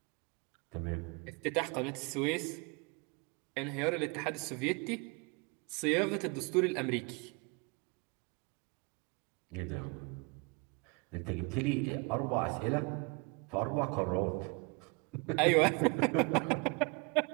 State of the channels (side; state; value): left; quieter; 30.3 dB